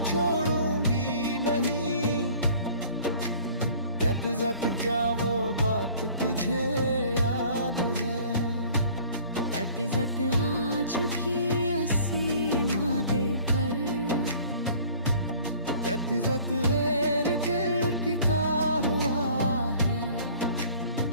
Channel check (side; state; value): both; inverted; correlation -0.51